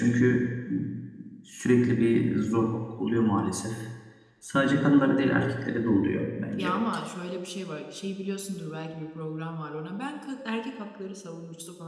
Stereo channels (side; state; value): both; identical; correlation 1.00